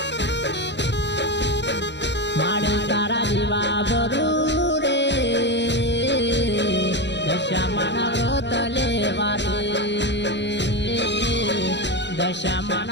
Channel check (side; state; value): right; late; 0.51 ms